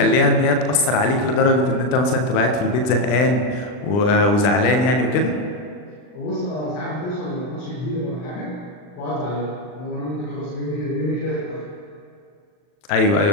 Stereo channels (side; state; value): right; late; 39 ms